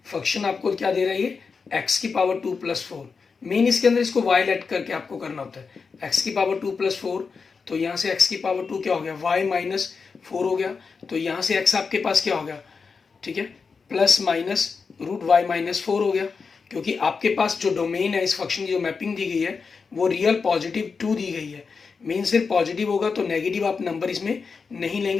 फंक्शन आपको क्या दे रहा है, ये x की पावर 2 + 4, मेन इसके अंदर इसको y लेट करके आपको करना होता है, x की पावर 2 + 4, तो यहाँ से x की पावर 2 क्या हो गया, y माइनस 4 हो गया, तो यहाँ से x आपके पास क्या हो गया, ठीक है, plus minus root y minus 4 हो गया, क्योंकि आपके पास जो डोमेन है इस फंक्शन की जो मैपिंग दी गई है वो रियल पॉजिटिव 2 दी गई है, मेन सिर्फ पॉजिटिव होगा तो नेगेटिव आप नंबर इसमें नहीं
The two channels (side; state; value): right; quieter; 5.1 dB